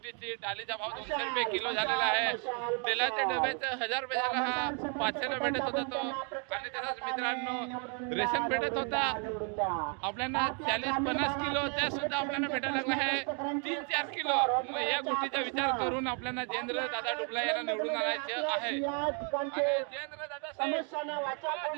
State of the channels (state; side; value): quieter; left; 39.4 dB